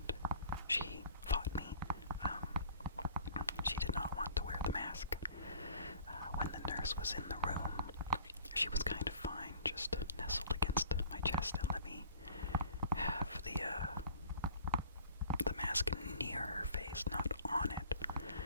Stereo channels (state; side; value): inverted; both; correlation -0.50